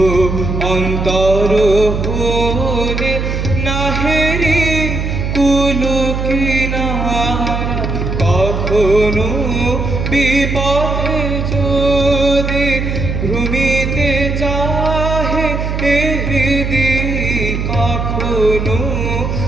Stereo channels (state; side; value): noise; right; hum, 2 dB below the sound